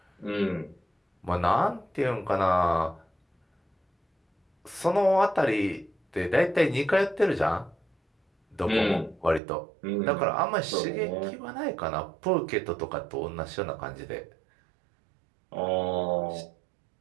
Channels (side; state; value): left; drops out; at 9.4 s